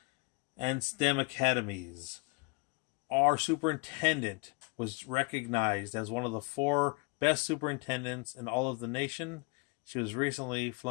and STEM academies. Our superintendent was recognized as one of the 4 best superintendents in all of the nation. She was recently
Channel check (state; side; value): quieter; right; 30.4 dB